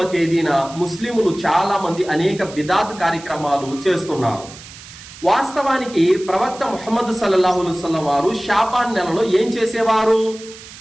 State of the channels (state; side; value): noise; right; hiss, 17 dB below the sound